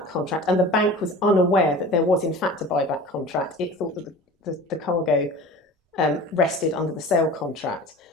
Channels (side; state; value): both; normal; correlation 0.38